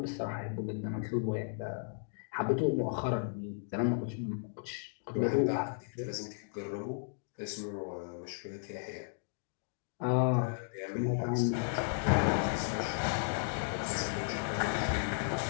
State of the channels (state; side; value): silent; right; digital silence